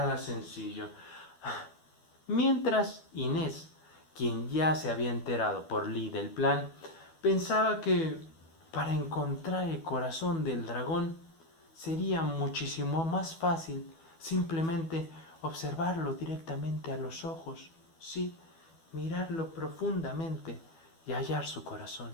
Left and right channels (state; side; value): late; right; 12 ms